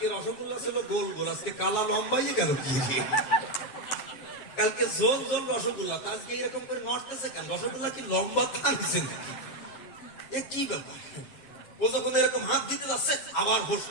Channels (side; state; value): right; late; 7.4 ms